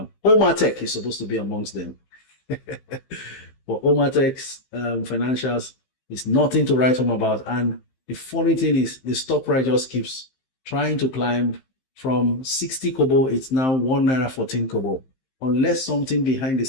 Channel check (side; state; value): right; late; 15 ms